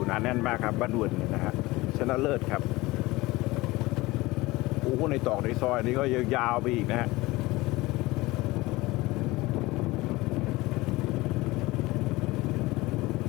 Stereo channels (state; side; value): quieter; right; 20.5 dB